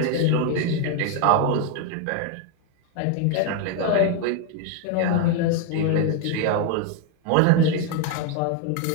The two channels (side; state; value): both; different; correlation 0.01